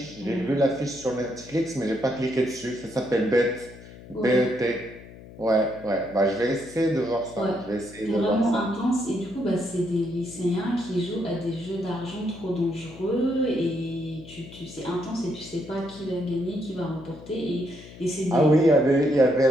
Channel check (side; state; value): left; noise; hum, 17 dB below the sound